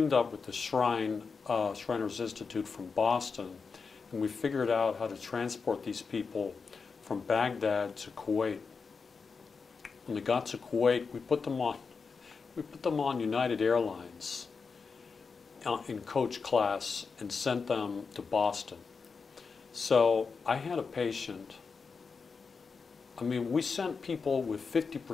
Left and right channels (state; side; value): quieter; right; 5.0 dB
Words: up with the Shriners Institute from Boston, and we figured out how to transport these people from Baghdad to Kuwait. When they got to Kuwait, we put them on United Airlines in coach class and sent them to Boston. So I had a patient. I mean, we sent people with